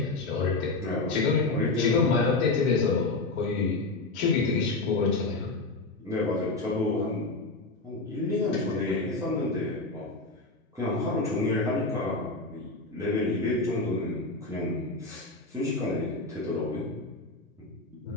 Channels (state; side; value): quieter; right; 3.3 dB